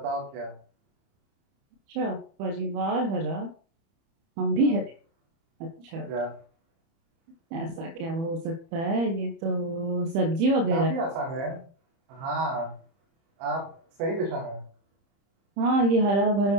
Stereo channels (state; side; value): late; left; 30 ms